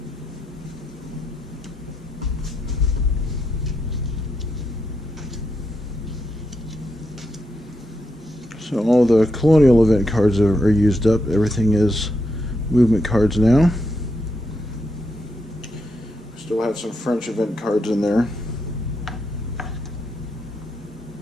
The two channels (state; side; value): normal; both; correlation 0.82